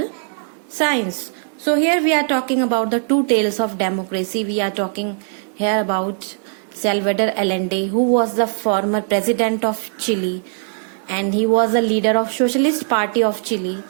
science. So here we are talking about the two tales of democracy. We are talking here about Salvador Allende, who was the former president of Chile and he was a leader of Socialist Party of Chile.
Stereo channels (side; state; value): left; silent; 60 dB below the other